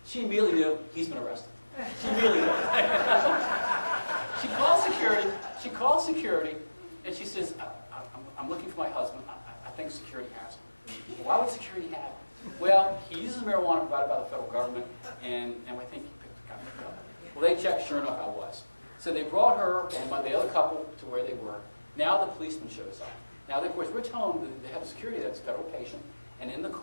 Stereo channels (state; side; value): inverted; both; correlation -1.00